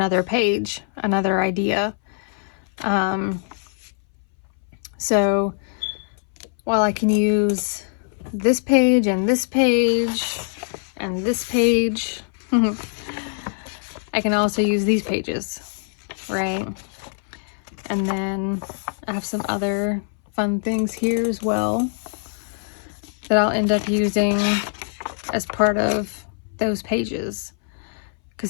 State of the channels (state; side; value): silent; right; 62 dB below the other